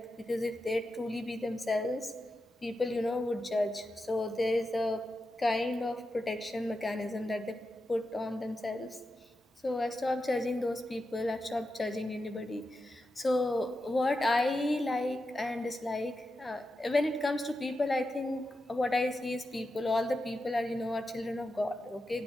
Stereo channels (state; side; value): normal; both; correlation 0.89